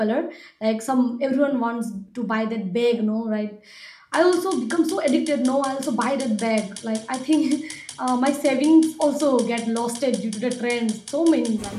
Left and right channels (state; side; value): identical; both; correlation 1.00